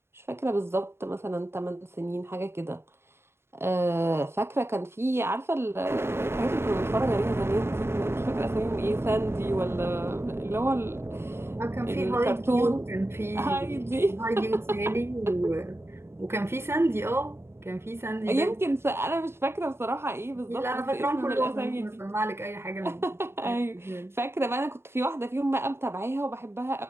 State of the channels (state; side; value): late; left; 0.12 ms